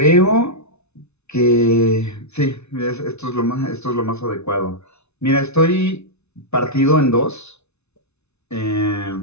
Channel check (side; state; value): right; late; 0.81 ms